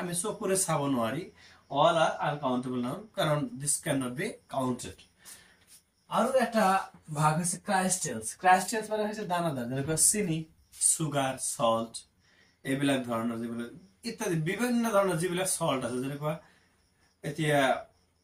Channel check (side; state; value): both; identical; correlation 1.00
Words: আমি চকুৰে চাব নোৱাৰি, অল আৰ আনকাউন্টেবল নাউন, কাৰণ this can not be counted. আৰু এটা ভাগ হৈছে ক্ৰাইস্টেলস। ক্ৰাইস্টেলস মানে হৈছে দানাদাৰ, যেনেকুৱা চিনি, সুগাৰ, সল্ট, এইবিলাক ধৰণৰ যিবিলাক ইত্যাদি বিভিন্ন ধৰণৰ যিবিলাক সল্ট আছে, যেনেকুৱা এতিয়া